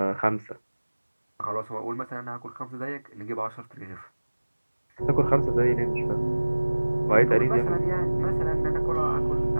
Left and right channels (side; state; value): both; inverted; correlation -1.00